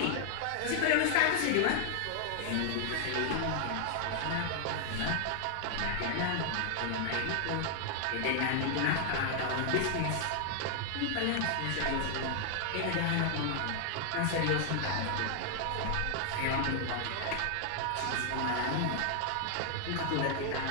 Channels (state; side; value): different; both; correlation -0.01